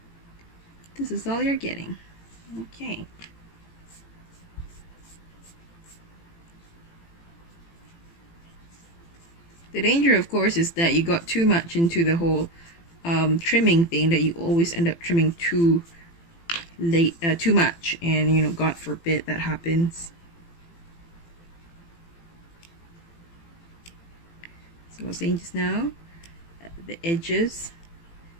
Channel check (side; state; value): right; late; 18 ms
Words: this is all you're getting. Okay. The danger, of course, is that you got too much into the whole trimming thing, that you always end up trimming too late, too much, and you know, God forbid that happens. So I was saying just now, the edges,